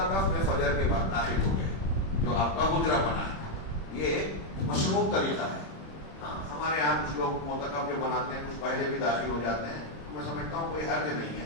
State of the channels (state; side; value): late; right; 26 ms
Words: میں فجر کے بعد داخل ہو گئے جو آپ کا حجرہ بنا ہے. یہ مشروع طریقہ ہے. ہاں ہمارے یہاں کچھ لوگ معتکف جو بناتے ہیں کچھ پہلے بھی داخل ہو جاتے ہیں. میں سمجھتا ہوں کوئی حرج نہیں